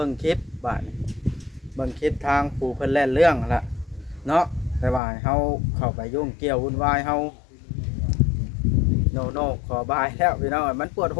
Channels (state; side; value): drops out; right; at 5.0 s